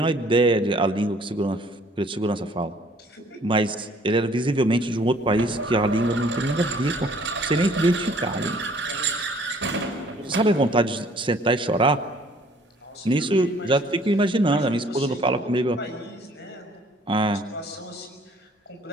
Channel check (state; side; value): normal; both; correlation 0.57